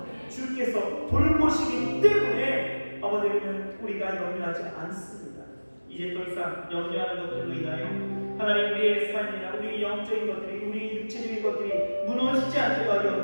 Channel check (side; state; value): both; inverted; correlation -1.00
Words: 주께서 돌보시기 때문에 아버지는 우리가 염려하지 않습니다. 이제 더 이상 염려하는 것들로 인하여 하나님 우리의 삶이나 우리 영적인 것들이, 우리 육체적인 것들이 무너지지 않게 하여